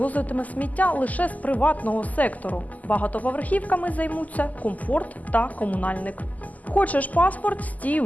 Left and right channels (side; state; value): right; late; 0.078 ms